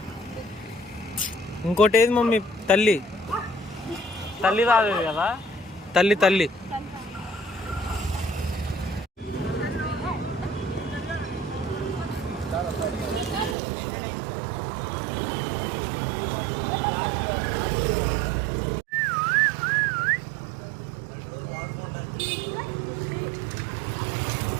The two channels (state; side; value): drops out; left; at 13.6 s